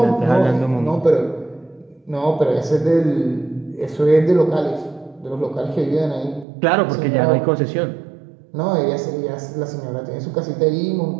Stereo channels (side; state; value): left; drops out; at 6.5 s